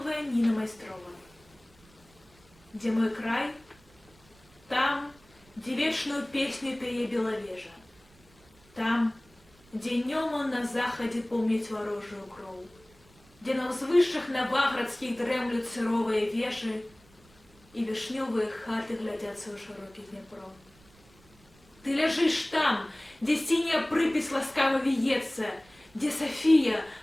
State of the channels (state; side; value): noise; right; rumble, 28 dB below the sound